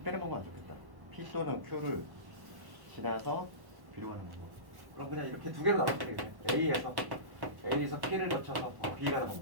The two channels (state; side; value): late; left; 1.1 ms